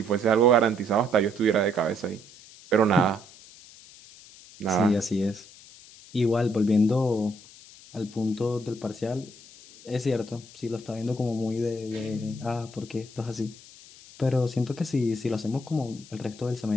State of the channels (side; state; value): left; noise; hiss, 21 dB below the sound